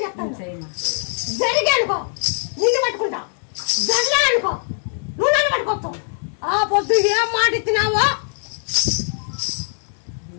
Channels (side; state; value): right; silent; digital silence